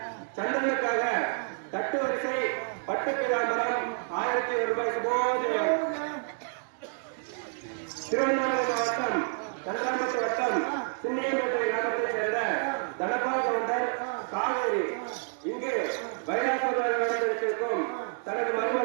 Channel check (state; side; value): silent; left; 58 dB below the other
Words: சந்திரனுக்காக தட்டு வரிசை பட்டு பிராமரம் 1001 ரூபாய் சுபோஜயம். திருவண்ணாமலை மாவட்டம் கன்றாம்பட்டு வட்டம் சின்னியம்பேட்டை கிராமத்தைச் சேர்ந்த தனபால் கவுண்டர் காவேரி இங்கு வைராசமாக நடந்திருக்கும் தனது